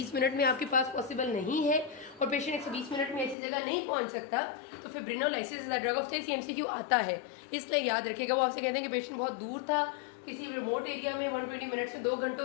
मिनट में आपके पास पॉसिबल नहीं है और पेशेंट 120 मिनट में ऐसी जगह नहीं पहुंच सकता तो फिब्रिनोलाइसिस is the drug of choice. MCQ आता है इसलिए याद रखेगा। वो आपसे कहते हैं कि पेशेंट बहुत दूर था, किसी रिमोट एरिया में 120 मिनट्स में 2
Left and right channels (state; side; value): drops out; right; at 3.4 s